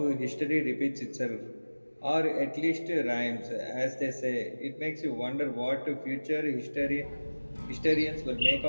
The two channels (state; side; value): inverted; both; correlation -1.00